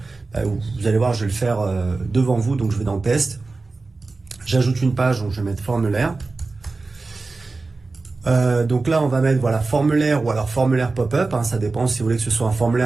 vous allez voir, je vais le faire devant vous, donc je vais dans test. J'ajoute une page, donc je vais mettre formulaire. Donc là, on va mettre voilà, formulaire ou alors formulaire pop-up. Hein, ça dépend si vous voulez que ce soit un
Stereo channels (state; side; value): quieter; left; 3.7 dB